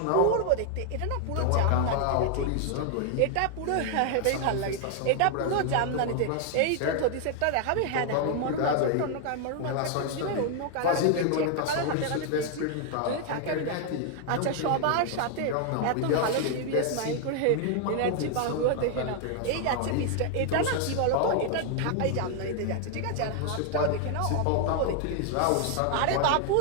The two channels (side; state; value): both; different; correlation 0.00